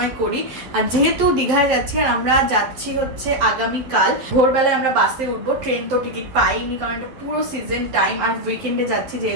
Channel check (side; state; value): left; late; 11 ms